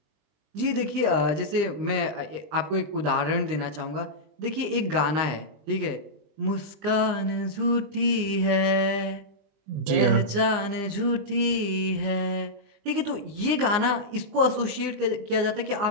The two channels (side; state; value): left; late; 20 ms